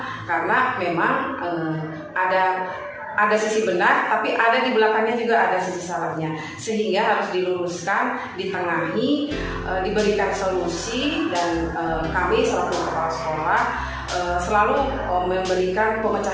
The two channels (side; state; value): both; identical; correlation 1.00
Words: Karena memang ada sisi benar, tapi ada di belakangnya juga ada sisi salahnya, sehingga harus diluruskan, ditengahi, diberikan solusi, dan kami selaku kepala sekolah selalu memberikan